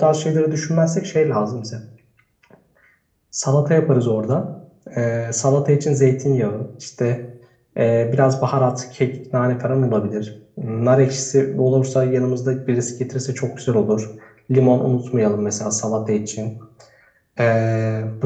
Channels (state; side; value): identical; both; correlation 1.00